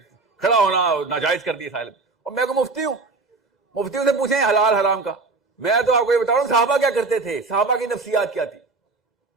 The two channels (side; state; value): left; quieter; 3.8 dB